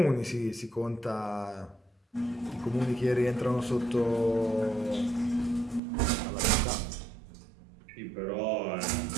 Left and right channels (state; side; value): drops out; left; at 5.8 s